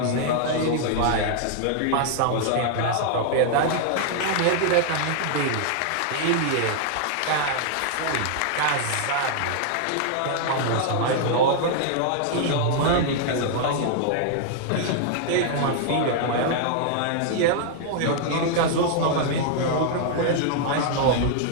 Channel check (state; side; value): different; both; correlation -0.01